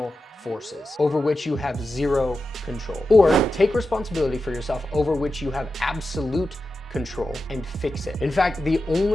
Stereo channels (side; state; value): both; normal; correlation 0.91